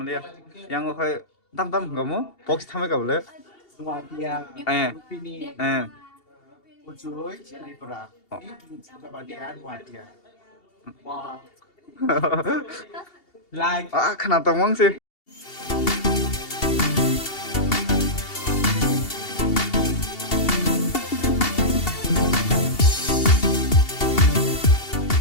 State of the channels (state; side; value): late; right; 2.8 ms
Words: Yang go kai tam gamu box thame ka bole. Nuatia. Eh. Rupini. Eh. Ujoy. Tripura. Kebahagiaan Nuatia. Wah. Like. Ah, kenapa tawang sih?